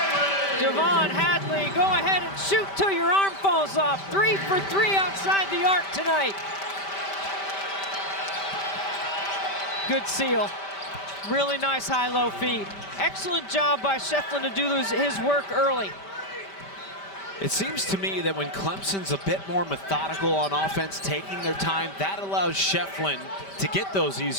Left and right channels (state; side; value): late; right; 5.1 ms